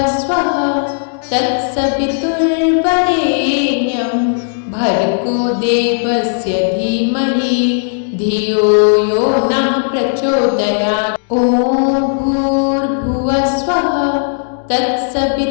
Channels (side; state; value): right; silent; digital silence